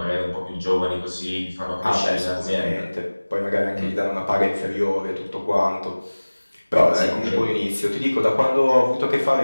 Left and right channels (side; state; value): both; inverted; correlation -1.00